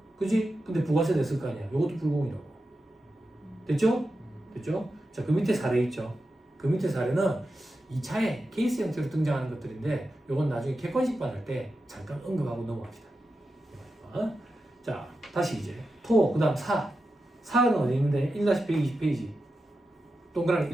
그지? 근데 부가세 냈을 거 아니야. 요것도 불공이라고. 됐죠? 됐죠? 자, 그 밑에 사례 있죠. 그 밑에 사례는 2차에 케이스 형태로 등장하는 것들인데 요건 나중에 객관식반 할 때 잠깐 언급하고 넘어갑시다. 자, 다시 이제 토, 그 다음 사. 사는 어디 있는데 1-120페이지. 동그라미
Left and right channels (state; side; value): normal; both; correlation 0.90